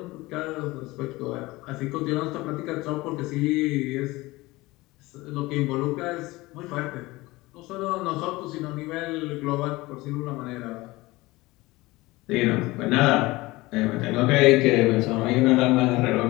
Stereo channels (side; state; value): right; quieter; 20.6 dB